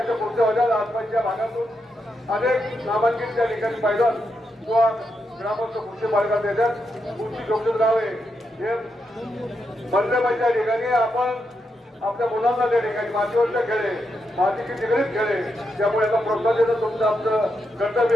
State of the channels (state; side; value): normal; both; correlation 0.84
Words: कुस्त्या होत्या. आसपासच्या भागातून अनेक नामांकित त्या ठिकाणी पैलवान किंवा ग्रामस्थ कुस्ती बाळगात येतात. कुस्ती जोखीम लावे हे बंदबाईच्या ठिकाणी आपण आपल्या मुलांना त्या ठिकाणी मातीवरच्या खेळे मातीची निगडीत खेळे त्यामुळे याचा प्रोत्साहन देणं तुमचं आमचं